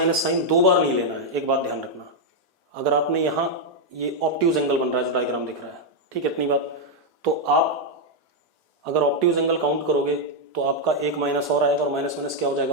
साइन दो बार नहीं लेना है, एक बात ध्यान रखना। अगर आपने यहाँ ये ऑप्टिव्स एंगल बन रहा है जो डायग्राम दिख रहा है, ठीक है इतनी बात, तो आप अगर ऑप्टिव्स एंगल काउंट करोगे तो आपका एक माइनस और आएगा और माइनस माइनस क्या हो जाएगा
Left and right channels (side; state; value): both; normal; correlation -0.01